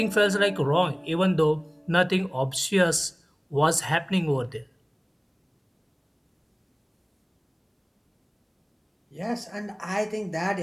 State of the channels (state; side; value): identical; both; correlation 1.00